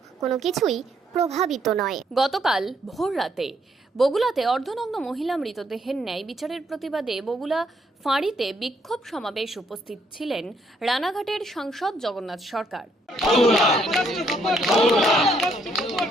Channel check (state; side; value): normal; both; correlation 0.71